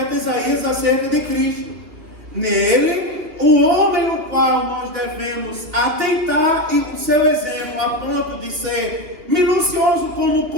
Isaías acerca de Cristo. Nele, o homem o qual nós devemos atentar e o seu exemplo, a ponto de ser minucioso como o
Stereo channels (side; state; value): left; late; 3.0 ms